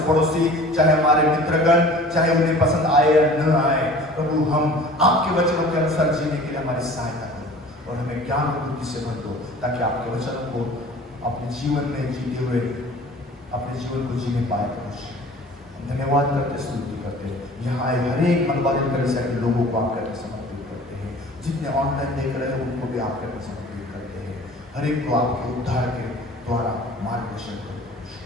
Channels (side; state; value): both; normal; correlation 0.45